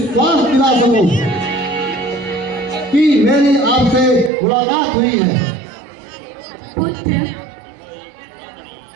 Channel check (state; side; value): drops out; left; at 4.3 s